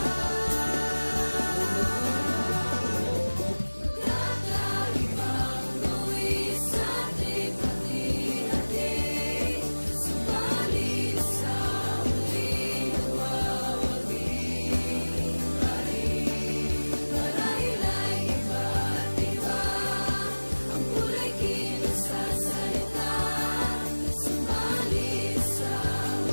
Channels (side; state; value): both; inverted; correlation -1.00